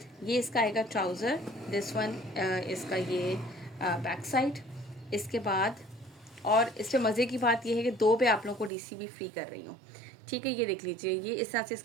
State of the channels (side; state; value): left; drops out; at 8.7 s